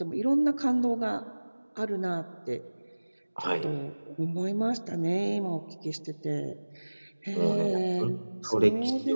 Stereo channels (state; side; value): inverted; both; correlation -1.00